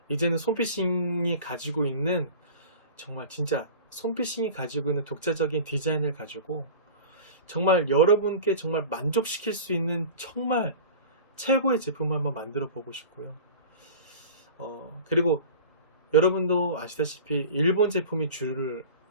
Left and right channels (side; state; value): both; inverted; correlation -0.37